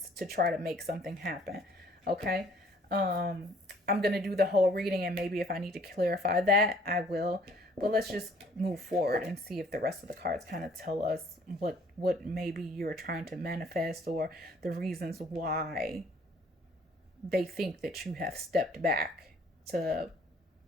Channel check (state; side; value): normal; both; correlation 0.59